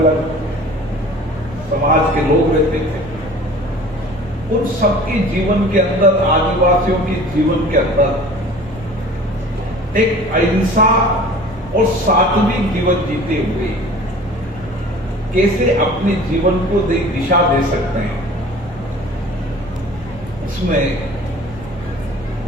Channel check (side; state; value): both; normal; correlation 0.44